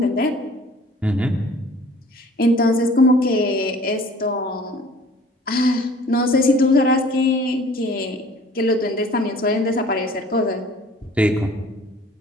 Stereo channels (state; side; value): normal; both; correlation 0.50